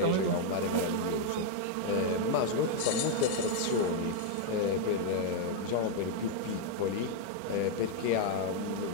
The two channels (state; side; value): different; both; correlation 0.00